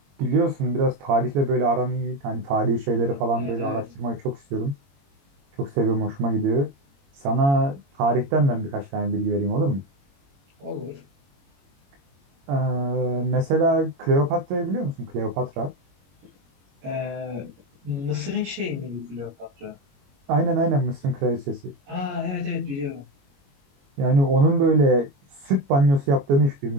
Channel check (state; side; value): late; left; 22 ms